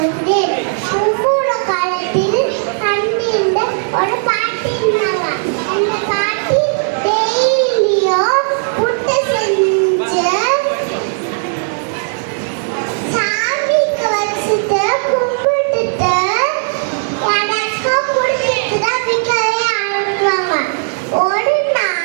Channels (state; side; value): silent; left; digital silence